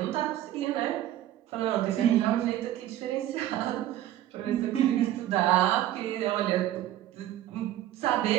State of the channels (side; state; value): left; quieter; 13.0 dB